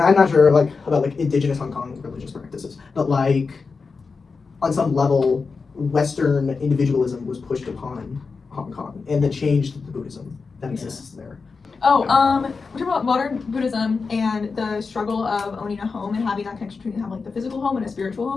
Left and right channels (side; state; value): right; quieter; 4.7 dB